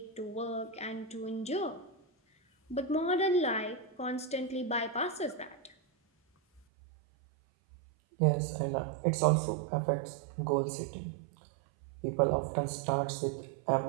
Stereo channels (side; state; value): left; drops out; at 6.6 s